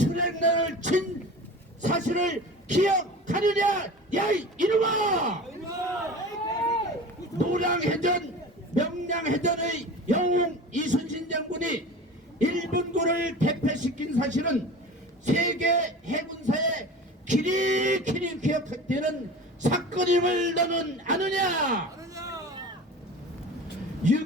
친 사실을 기억하느냐 야 이놈아. 노량해전 명량해전의 영웅 이순신 장군이 일본군을 대패시킨 사실은 세계 해군사에 길이 기억되는 사건임을 너는 아느냐.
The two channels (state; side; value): normal; both; correlation 0.35